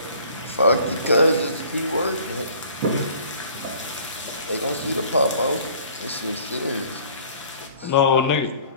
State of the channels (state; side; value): inverted; both; correlation -0.52